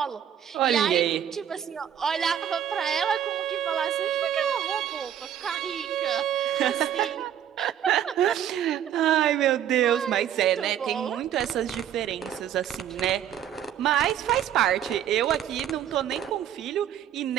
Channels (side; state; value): left; quieter; 10.0 dB